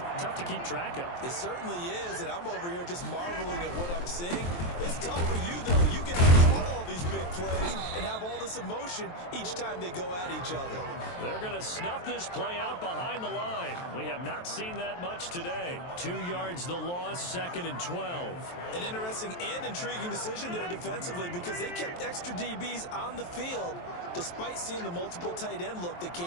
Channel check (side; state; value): right; late; 23 ms